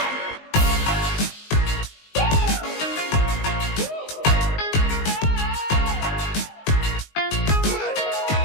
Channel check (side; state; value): right; late; 19 ms